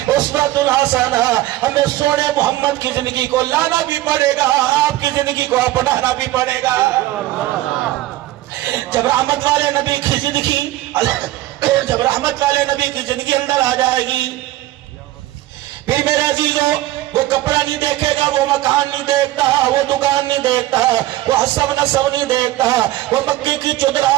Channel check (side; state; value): left; quieter; 16.0 dB